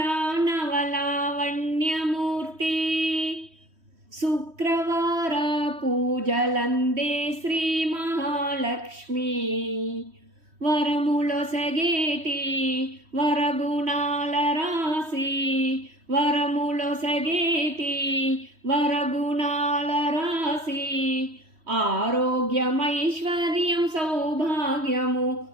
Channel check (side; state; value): left; late; 3.1 ms